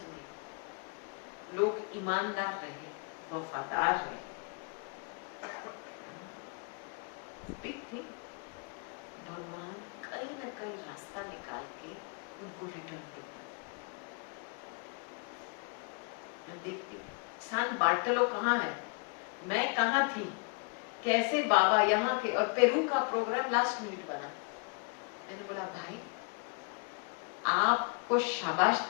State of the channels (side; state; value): right; quieter; 35.6 dB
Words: में लोग ईमानदार रहे, वफादार रहे, बिग थिंग। भगवान कहीं ना कहीं रास्ता निकाल के उनको रिटर्न देगा। मैं देखती सान बार्टलो कहाँ है, मैं कहाँ थी, कैसे बाबा यहाँ के, और पेरू का प्रोग्राम लास्ट मिनट बना। मैंने बोला भाई आपको शाबाश